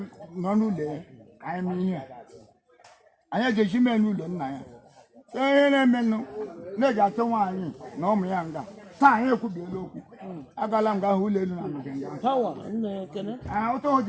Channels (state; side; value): identical; both; correlation 1.00